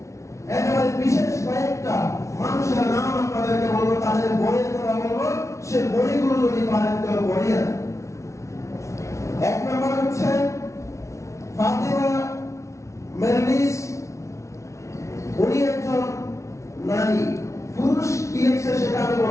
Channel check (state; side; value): late; right; 0.14 ms